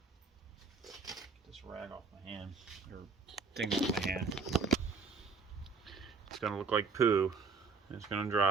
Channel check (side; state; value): left; quieter; 4.8 dB